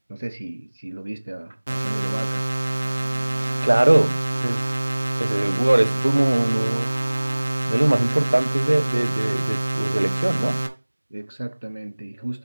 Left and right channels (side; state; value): both; inverted; correlation -1.00